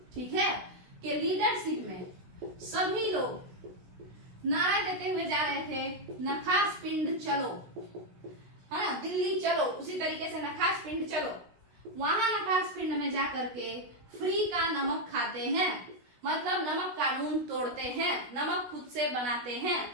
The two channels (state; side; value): late; left; 16 ms